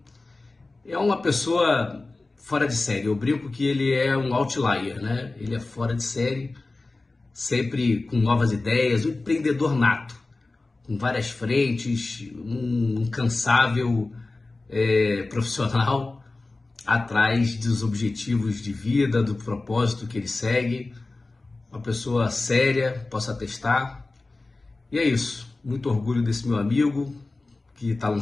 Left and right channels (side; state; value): right; quieter; 3.3 dB